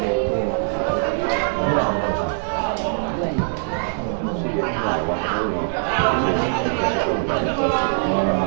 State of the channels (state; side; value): silent; left; digital silence